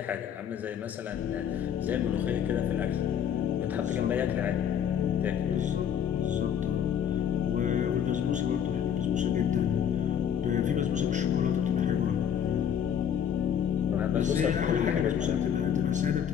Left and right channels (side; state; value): right; quieter; 8.7 dB